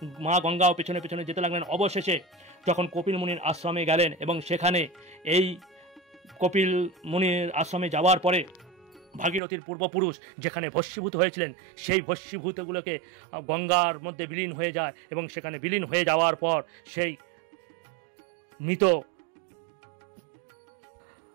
মা গঙ্গাও পেছনে পেছনে যেতে লাগলেন। অবশেষে যখন কপিল মুনির আশ্রমে গেলেন, এবং সেখানে এই কপিল মুনির আশ্রমে যাওয়ার পরে ভাগীরথীর পূর্বপুরুষ যেখানে ভস্মীভূত হয়েছিলেন, সেই ভস্মীভূতগুলোকে গঙ্গার মধ্যে বিলীন হয়ে যায়, এবং সেখানে বিলীন হয়ে যাওয়ার পর সেই মৃত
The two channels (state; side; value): drops out; left; at 9.4 s